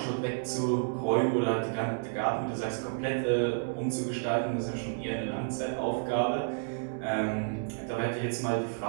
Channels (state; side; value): silent; left; digital silence